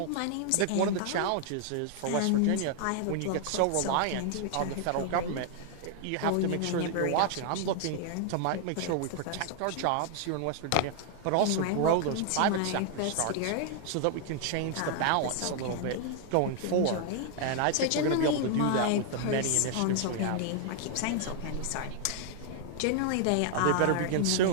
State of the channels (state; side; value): different; both; correlation 0.00